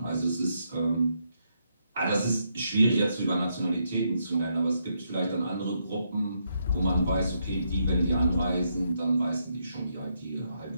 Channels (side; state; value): both; inverted; correlation -0.79